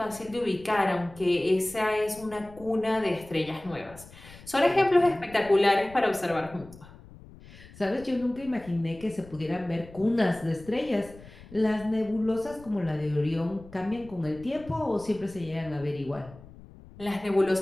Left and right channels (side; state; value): left; noise; rumble, 20 dB below the sound